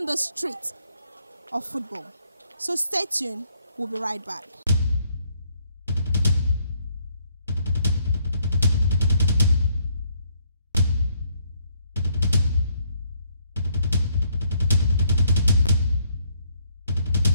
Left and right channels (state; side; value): inverted; both; correlation -0.70